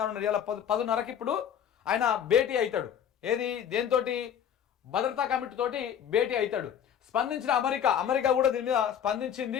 ఇలా 10:30కి ఇప్పుడు ఆయన భేటీ అవుతాడు. దేంతోటి? భద్రతా కమిటీ తోటి భేటీ అవుతాడు. స్పందించిన అమెరికా కూడా దీని మీద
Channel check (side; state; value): right; quieter; 8.9 dB